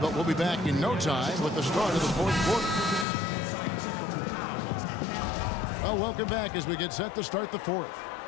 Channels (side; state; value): right; drops out; at 3.1 s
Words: we'll be back in no time with the start of the fourth quarter. Well, welcome back as we get set to start the fourth.